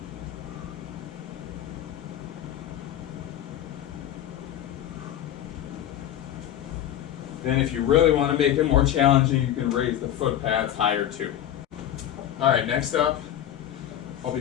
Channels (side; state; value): right; quieter; 11.4 dB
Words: Then if you really want to make it more challenging, you can raise the foot pads higher too. All right, next up, I'll